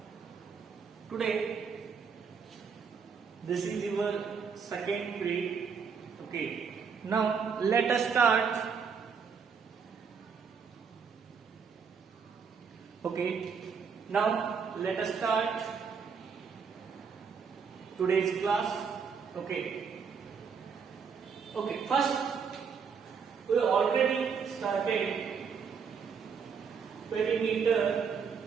Today, this is your second period. Okay. Now, let us start. Okay. Now, let us start today's class. Okay. Okay. First, we already started perimeter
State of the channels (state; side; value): quieter; left; 6.1 dB